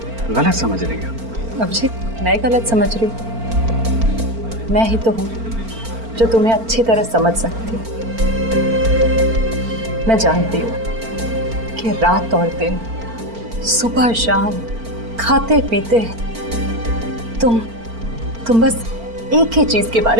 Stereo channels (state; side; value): late; left; 4.4 ms